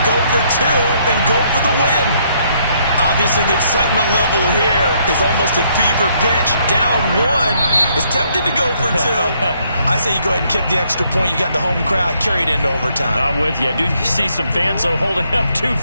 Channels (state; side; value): inverted; both; correlation -0.70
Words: go for two and go for the win. Obviously, the excitement level here is almost a fever pitch. Down one. It's tempting to go for two. I say you go ahead and kick the extra point. You got the home crowd carried into overtime. I'm with you. I do see some fans, though, holding up 2